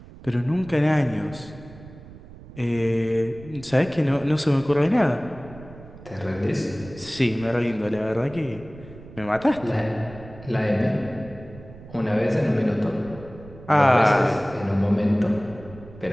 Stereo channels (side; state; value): right; noise; rumble, 18 dB below the sound